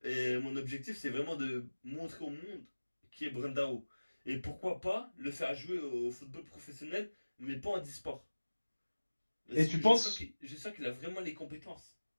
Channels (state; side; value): inverted; both; correlation -1.00